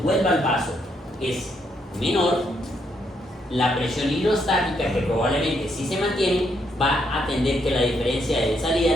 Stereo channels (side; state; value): both; normal; correlation 0.75